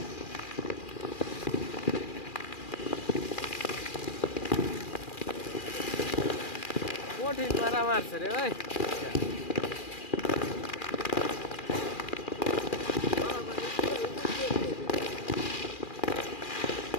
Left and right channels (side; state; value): right; late; 2.4 ms